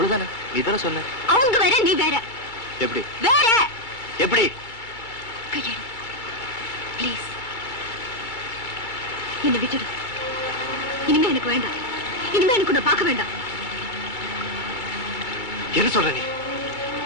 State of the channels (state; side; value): late; right; 2.2 ms